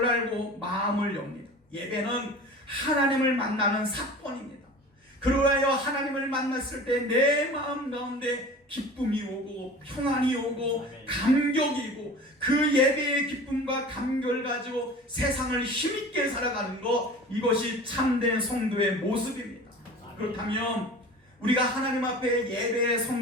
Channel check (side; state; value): both; normal; correlation 0.39